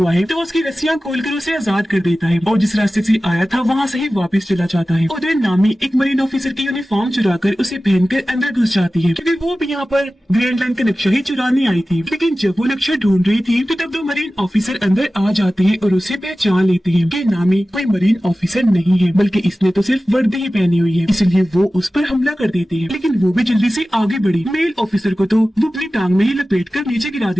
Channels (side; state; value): both; normal; correlation 0.96